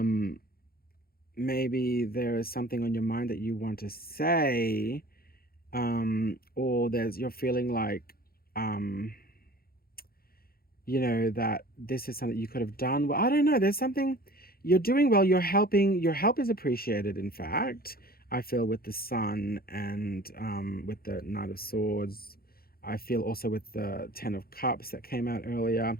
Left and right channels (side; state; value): right; late; 0.44 ms